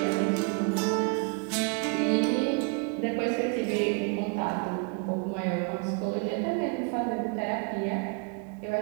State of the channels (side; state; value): left; quieter; 35.9 dB